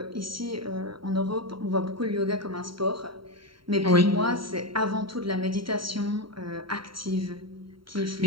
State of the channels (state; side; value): late; left; 0.73 ms